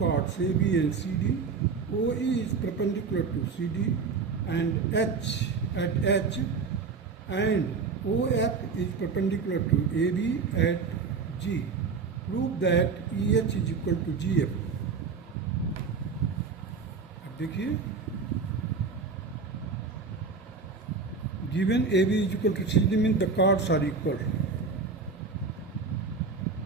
AB and CD. OE is perpendicular to CD and H at H, and OF is perpendicular to AB at G. Prove that EH is equal to GF. अब देखिए, given AB is equal to CD means the chords are equal,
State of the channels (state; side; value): quieter; left; 4.9 dB